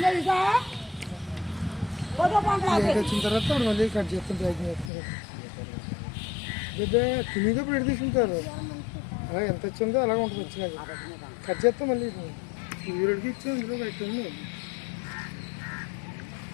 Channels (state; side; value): drops out; right; at 4.9 s